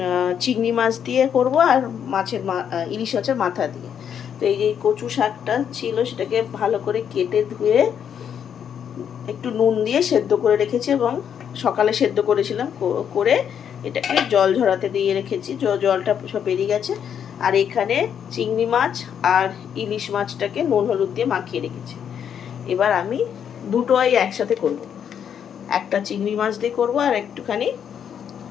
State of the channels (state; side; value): quieter; right; 8.4 dB